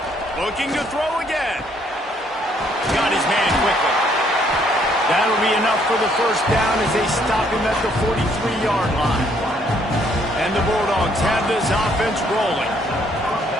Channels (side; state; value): both; normal; correlation 0.67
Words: Looking to throw again. Got his man quickly. That'll be enough for the first down as they stop him at the 43-yard line. And the Bulldogs have this offense rolling.